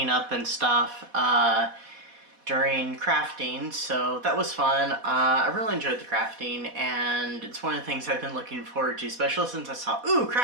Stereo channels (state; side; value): late; left; 4.1 ms